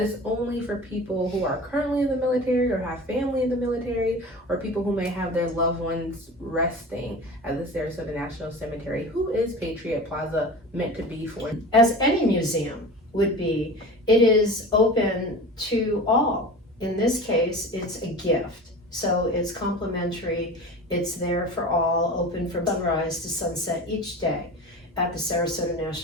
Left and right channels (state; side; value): normal; both; correlation 0.34